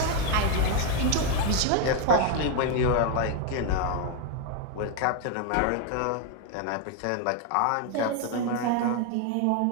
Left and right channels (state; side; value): different; both; correlation 0.01